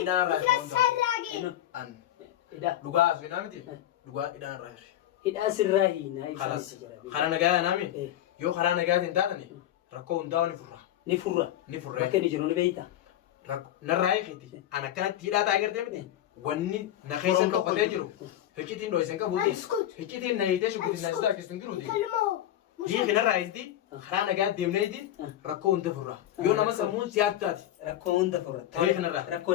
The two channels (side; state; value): right; quieter; 12.4 dB